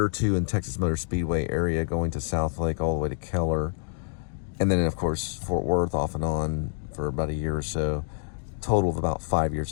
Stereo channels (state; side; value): silent; right; digital silence